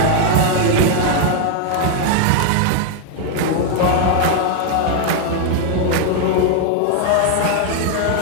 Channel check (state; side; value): different; both; correlation 0.00